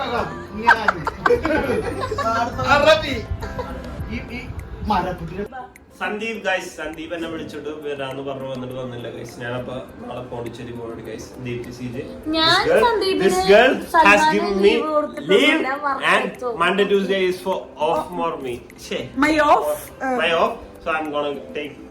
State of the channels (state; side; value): identical; both; correlation 1.00